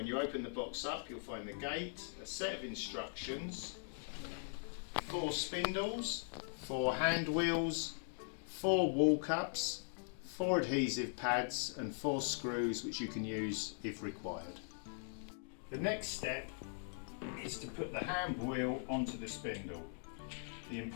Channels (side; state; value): right; silent; digital silence